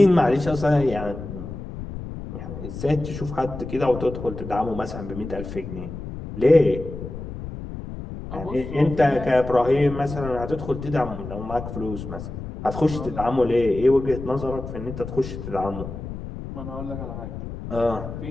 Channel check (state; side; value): noise; left; rumble, 9 dB below the sound